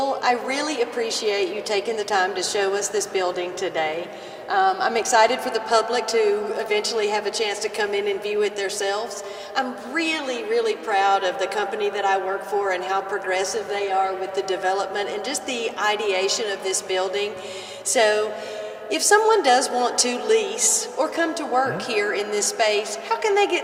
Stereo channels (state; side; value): identical; both; correlation 1.00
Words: I really appreciate you taking the time to show us this building today. I'm excited for the public to eventually have a chance to come in and view it themselves. I'm really, really proud of the company that I work for and how progressive they are with the development and just the ideation of this building. So if someone does want to lease or come to work here in this space, how can they get